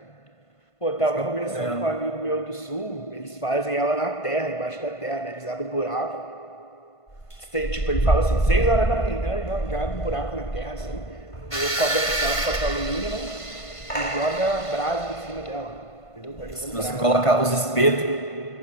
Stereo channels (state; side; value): late; right; 1.5 ms